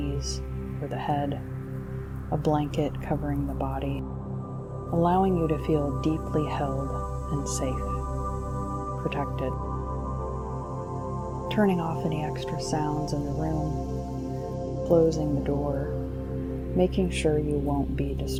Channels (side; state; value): both; identical; correlation 1.00